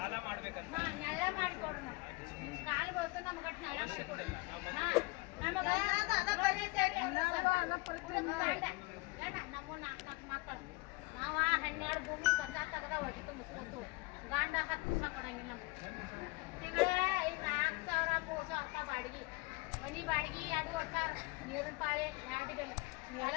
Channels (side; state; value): right; quieter; 25.4 dB